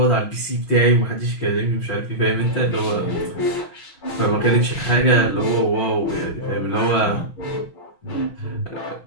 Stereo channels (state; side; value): late; right; 6.2 ms